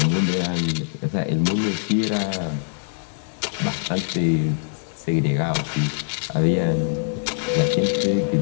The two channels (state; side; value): silent; right; digital silence